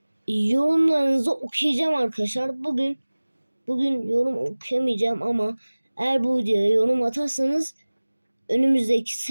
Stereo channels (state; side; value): inverted; both; correlation -1.00